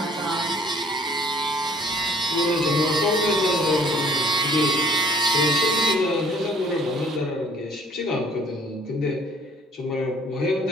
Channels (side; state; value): both; normal; correlation 0.57